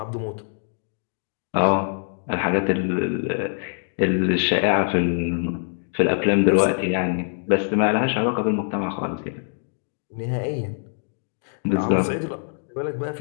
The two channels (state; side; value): silent; right; digital silence